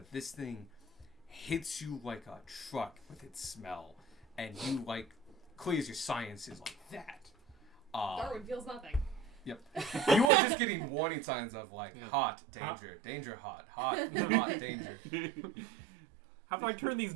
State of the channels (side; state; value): left; drops out; at 10.3 s